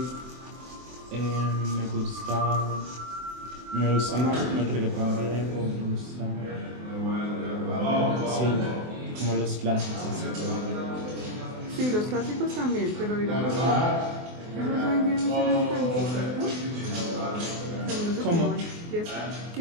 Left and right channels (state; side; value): late; left; 24 ms